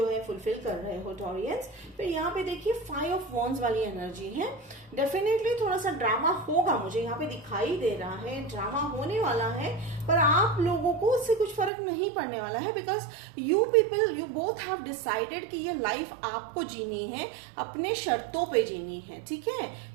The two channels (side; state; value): left; drops out; at 11.7 s